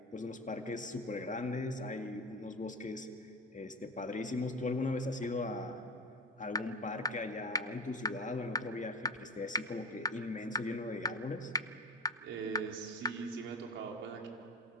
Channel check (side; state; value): both; normal; correlation 0.30